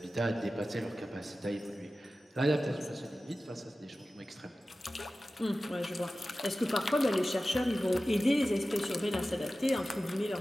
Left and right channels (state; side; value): normal; both; correlation 0.95